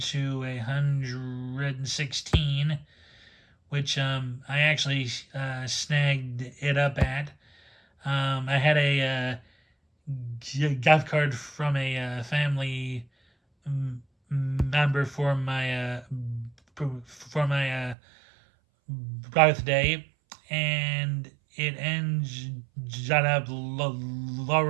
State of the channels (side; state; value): left; drops out; at 17.9 s